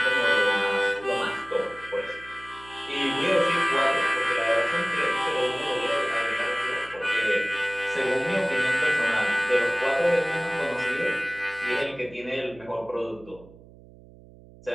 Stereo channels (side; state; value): right; noise; hum, 22 dB below the sound